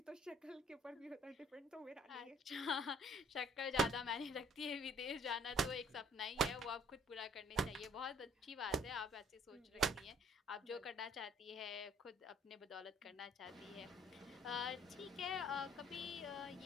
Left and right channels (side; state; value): both; normal; correlation 0.59